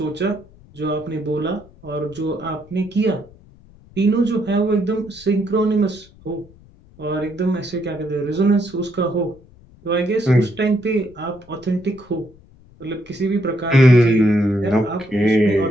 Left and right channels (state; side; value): noise; left; rumble, 25 dB below the sound